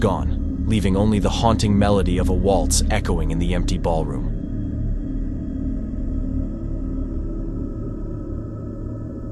leaving only the haunting melody of a waltz echoing in the empty ballroom.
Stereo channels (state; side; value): identical; both; correlation 1.00